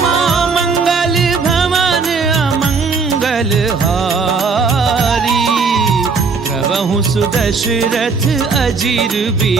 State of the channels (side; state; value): left; quieter; 4.8 dB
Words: मंगल भवन अमंगल हारी प्रभु सुदशरथ अजीर